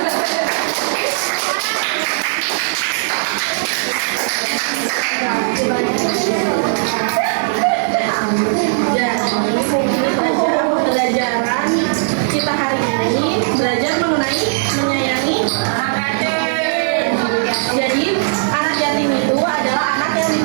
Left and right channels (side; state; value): left; silent; digital silence